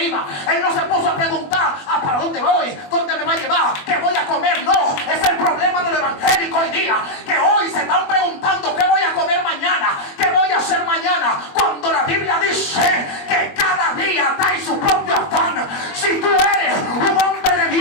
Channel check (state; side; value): late; right; 21 ms